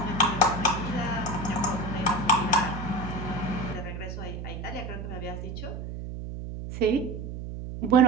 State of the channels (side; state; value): right; noise; hum, 7 dB below the sound